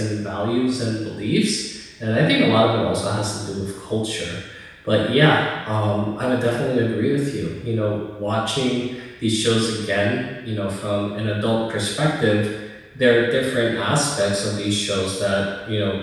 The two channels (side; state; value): both; identical; correlation 1.00